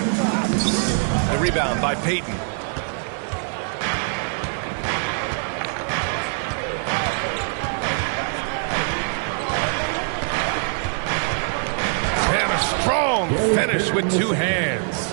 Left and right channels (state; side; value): silent; left; 63 dB below the other